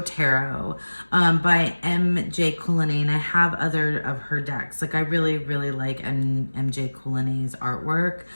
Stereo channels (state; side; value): inverted; both; correlation -1.00